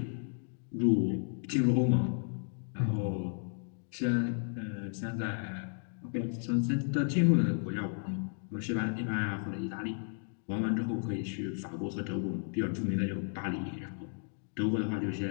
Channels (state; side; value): silent; right; 55 dB below the other